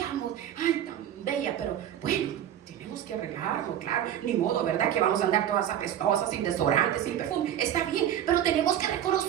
Ay, tan bella, pero bueno, tenemos que arreglarlo, claro, ni modo, ¿verdad? Que vamos a andar todas apestosas, sin desodorante, sin perfume. Está bien, pero tenemos que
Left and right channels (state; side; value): quieter; left; 10.7 dB